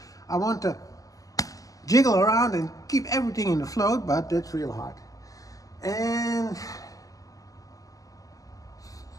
I want to jiggle around and keep everything in the float, but that's real hard. And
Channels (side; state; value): right; late; 0.17 ms